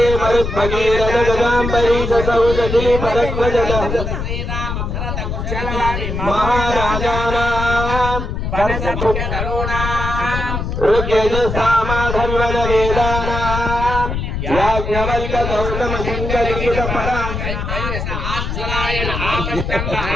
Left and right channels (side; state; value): left; noise; rumble, 3 dB below the sound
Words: मरुद्भगीरथ गदाम्बरी सौदती भरद्वज महाराजाना ऋग्यजुस्सामधर्वण वेदानां याज्ञवल्क्य गौतम सिंहलिखित आश्चर्यायन आपस्तंभ